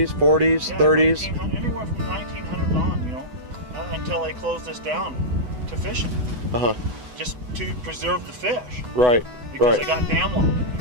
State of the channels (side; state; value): left; late; 8.1 ms